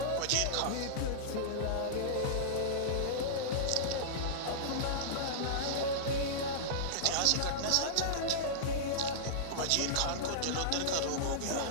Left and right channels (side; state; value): both; different; correlation -0.03